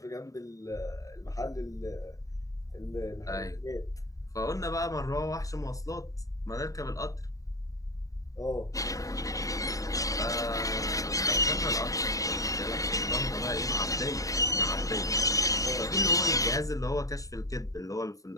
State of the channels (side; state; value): right; late; 0.16 ms